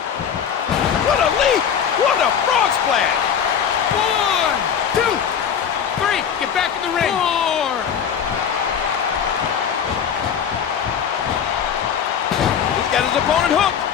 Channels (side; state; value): right; quieter; 7.9 dB